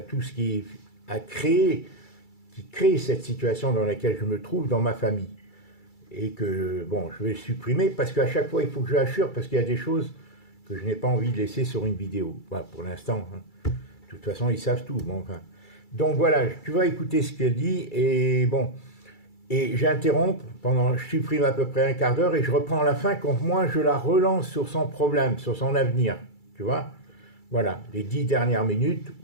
tout ce qui crée cette situation dans laquelle je me trouve dans ma famille. Et que, bon, je vais supprimer, parce qu'à chaque fois, il faut que je l'assure, parce qu'il y a des choses que je n'ai pas envie de laisser sur une vidéo. Voilà, pour l'instant. Hein. De toute façon, ils savent tout. Bon, enfin. Donc voilà, tu vas écouter ce qu'elle dit, et bon... Et j'interromps je supprime à peu près un quart d'heure et je reprends à la fin quand moi je la relance sur son problème, sur son avenir. Tu vois? Voilà, les 10 dernières minutes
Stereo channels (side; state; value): right; late; 2.3 ms